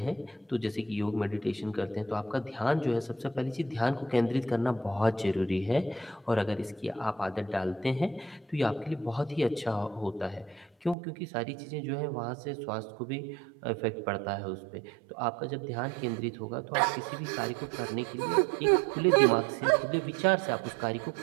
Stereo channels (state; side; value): drops out; left; at 11.0 s